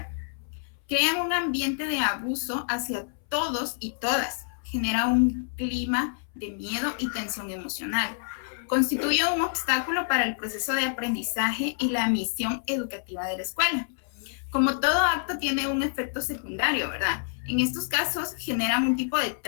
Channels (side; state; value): right; silent; 60 dB below the other